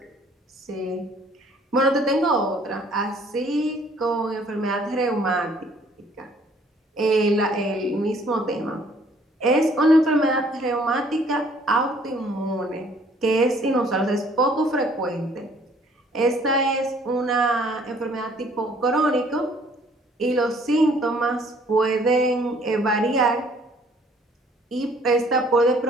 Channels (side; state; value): both; normal; correlation 0.60